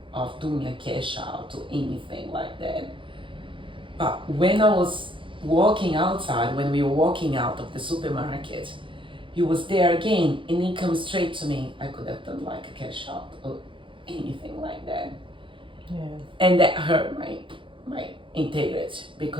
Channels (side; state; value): left; late; 0.25 ms